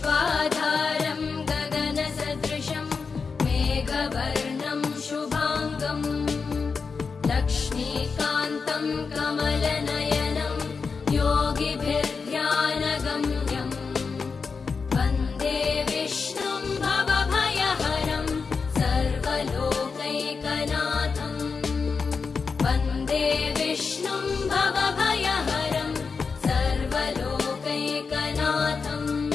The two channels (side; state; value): right; quieter; 5.1 dB